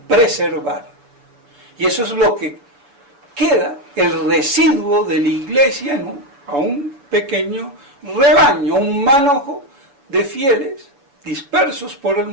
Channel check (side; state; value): left; late; 7.0 ms